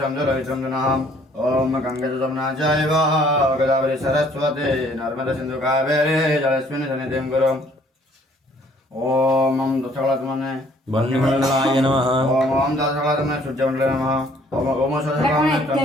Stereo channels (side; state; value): both; normal; correlation 0.60